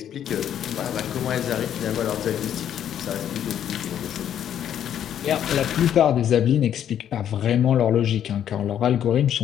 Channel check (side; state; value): right; quieter; 9.9 dB